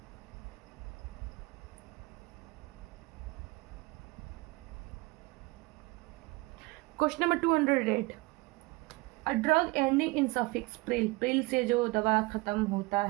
Question number 208, a drug ending in suffix Pril, Pril से जो दवा खत्म होता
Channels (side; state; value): left; quieter; 23.5 dB